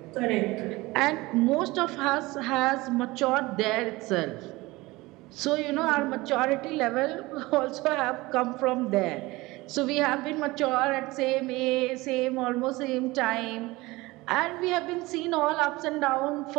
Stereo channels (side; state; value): left; quieter; 21.1 dB